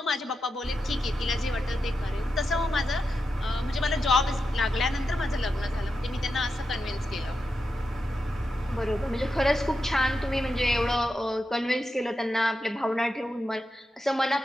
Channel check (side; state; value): both; normal; correlation 0.88